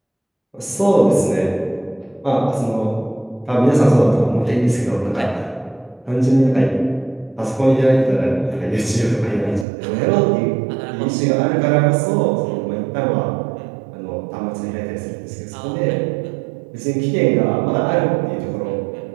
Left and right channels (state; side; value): drops out; left; at 9.7 s